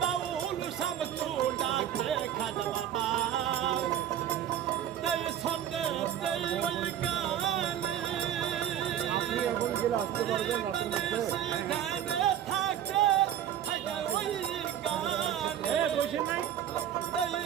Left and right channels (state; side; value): quieter; left; 10.5 dB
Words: বাউল শামসু ডাকে খাদা বাবা তাই সঙ্গে তাই ওই গানে থাকে থাকে ওই গানে